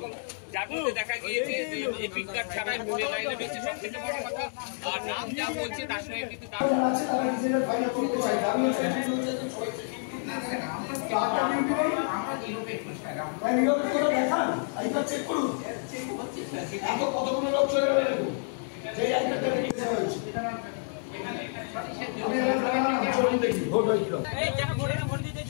যার মধ্যে দেখা গিয়েছে যে এপিক কার্ড ছাড়াই ভোটের লাইনে রয়েছে সব থেকে বড় কথা। আর নাম যা বলছে তার সঙ্গে কিন্তু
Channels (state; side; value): silent; right; digital silence